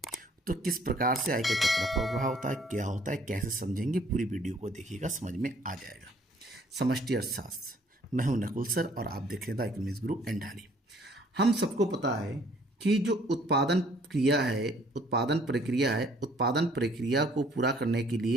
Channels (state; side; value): normal; both; correlation 0.60